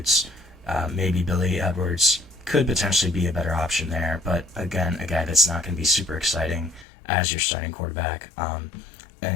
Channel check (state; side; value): drops out; right; at 6.9 s